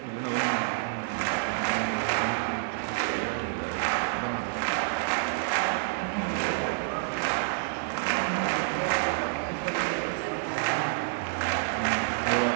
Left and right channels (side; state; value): left; silent; digital silence